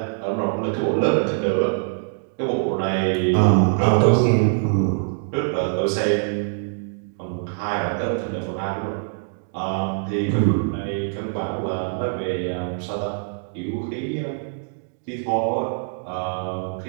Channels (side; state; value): left; silent; digital silence